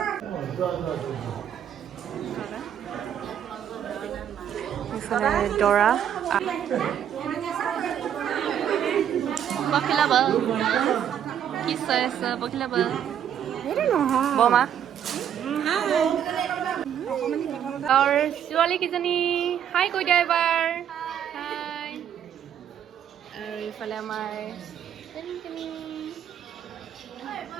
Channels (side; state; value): left; quieter; 9.4 dB